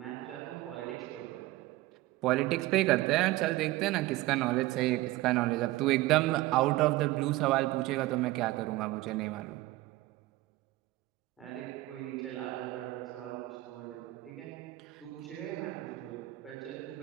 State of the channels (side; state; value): left; quieter; 18.5 dB